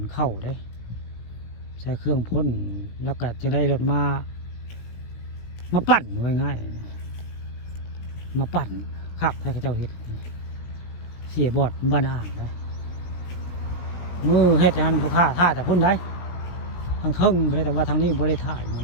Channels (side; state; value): right; late; 17 ms